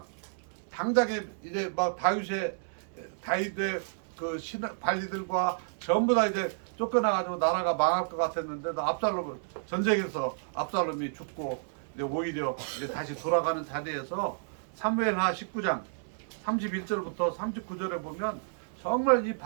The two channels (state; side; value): silent; left; digital silence